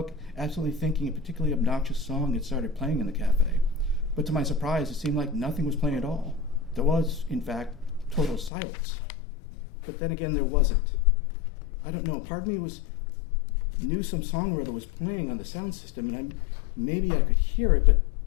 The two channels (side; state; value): right; drops out; at 8.5 s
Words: absolutely thinking a particularly obnoxious song had started playing in the cafe. But to my surprise, it seemed like nothing was playing at all. There was, in fact, total silence. But then again, there wasn't. I don't know, part of me knew some song or other was playing on the sound system, and maybe I could hear it, but